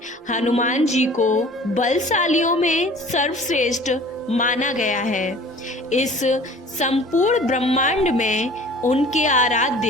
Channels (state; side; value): normal; both; correlation 0.47